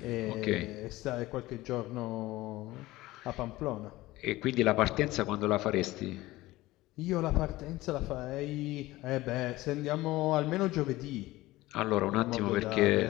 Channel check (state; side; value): quieter; right; 18.2 dB